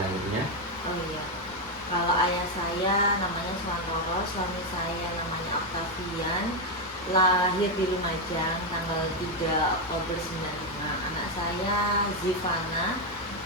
Oh iya, kalau ayah saya namanya Suantoro, suami saya namanya Octavian, lahir di Lumajang tanggal 3 Oktober 95. Anak saya Zivana,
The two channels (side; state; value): both; normal; correlation 0.05